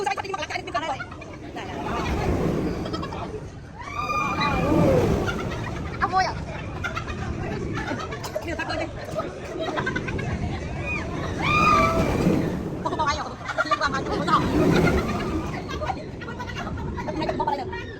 sẽ đi mặc lại bên này ông ơi à điều thật đi không bao ai rồi liên quan mà không có này không bao giờ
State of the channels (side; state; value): both; identical; correlation 1.00